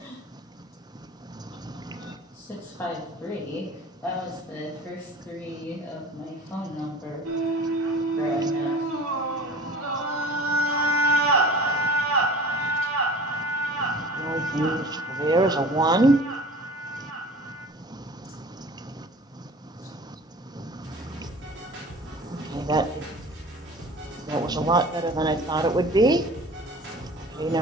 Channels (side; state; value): both; normal; correlation 0.42